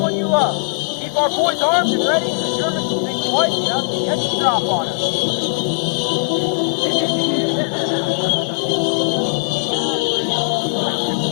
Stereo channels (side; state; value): right; silent; 63 dB below the other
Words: you love. Keep our boys armed and ready, and the Germans will think twice enough to get the drop on us.